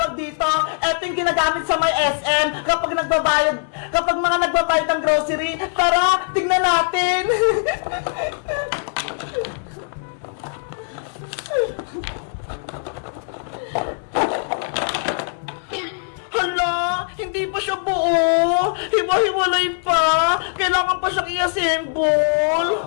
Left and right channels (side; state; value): right; silent; digital silence